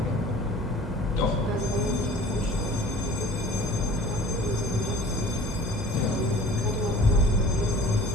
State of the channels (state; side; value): normal; both; correlation 0.45